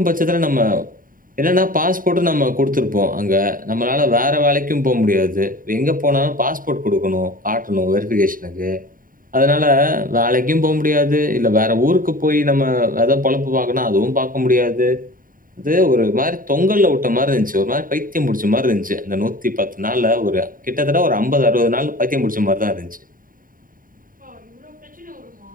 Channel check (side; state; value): left; late; 0.40 ms